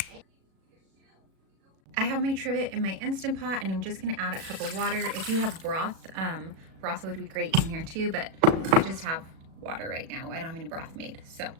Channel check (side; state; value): left; late; 37 ms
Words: I have my trivet in my Instant Pot, and I'm just gonna add a cup of water. If you have broth, broth would be great in here too, but I just have water right now. I don't have any broth made. So